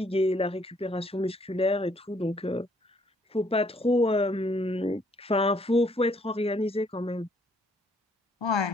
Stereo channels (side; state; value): both; normal; correlation 0.66